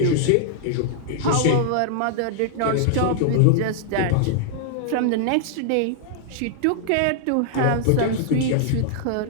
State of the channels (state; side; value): different; both; correlation -0.01